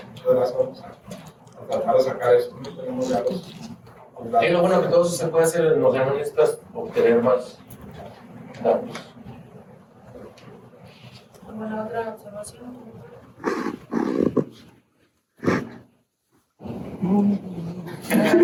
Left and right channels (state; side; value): identical; both; correlation 1.00